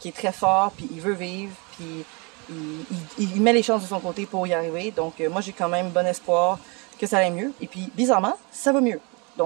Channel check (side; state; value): left; quieter; 30.1 dB